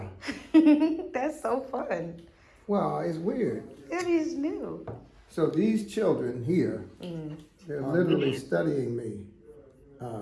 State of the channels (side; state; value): both; identical; correlation 1.00